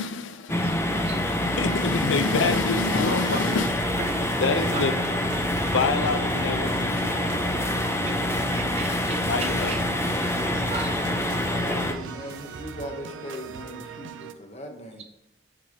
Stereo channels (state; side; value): normal; both; correlation 0.37